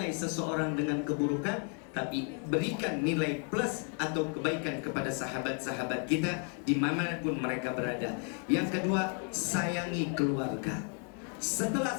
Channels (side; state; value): right; quieter; 38.3 dB